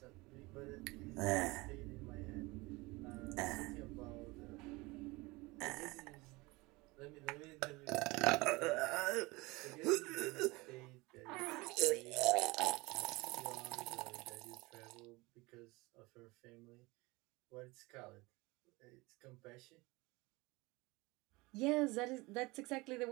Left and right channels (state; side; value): quieter; left; 23.1 dB